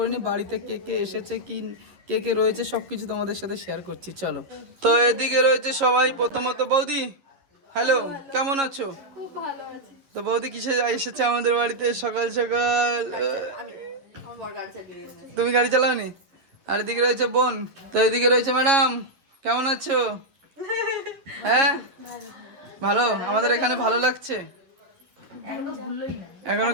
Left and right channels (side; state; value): left; late; 11 ms